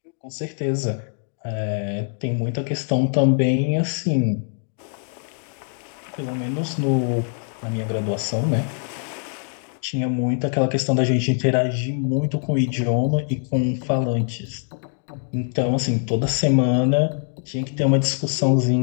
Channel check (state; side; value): silent; right; digital silence